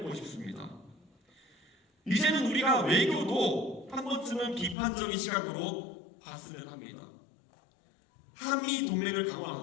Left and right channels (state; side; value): drops out; right; at 4.8 s